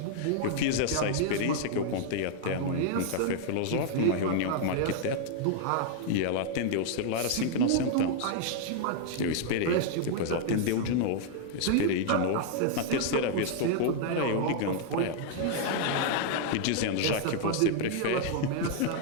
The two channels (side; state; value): both; different; correlation 0.00